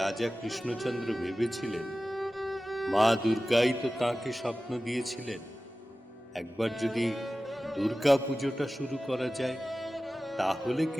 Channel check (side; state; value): both; normal; correlation 0.96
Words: রাজা কৃষ্ণচন্দ্র ভেবেছিলেন মা দুর্গাই তো তাঁকে স্বপ্ন দিয়েছিলেন, একবার যদি দুর্গা পুজোটা শুরু করা যায় তাহলে